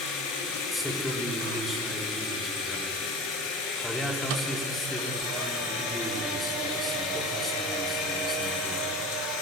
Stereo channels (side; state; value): both; normal; correlation 0.33